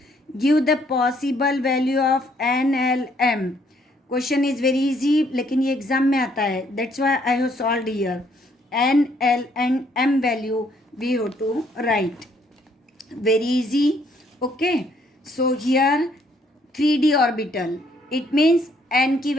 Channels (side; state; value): both; normal; correlation 0.67